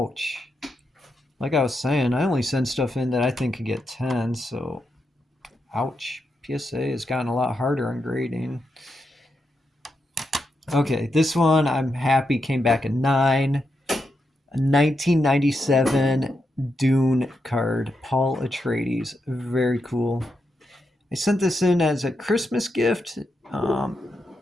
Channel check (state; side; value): normal; both; correlation 0.84